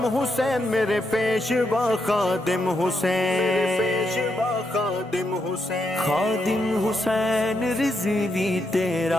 حسین، میرے پیشوا خادم حسین، پیشوا خادم حسین، خادم حسین رضوی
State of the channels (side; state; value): both; normal; correlation 0.81